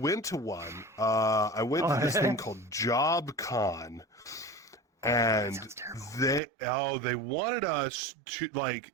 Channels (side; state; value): left; drops out; at 6.4 s